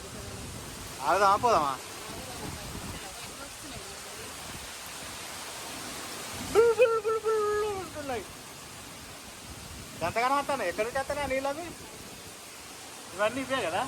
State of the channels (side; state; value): both; identical; correlation 1.00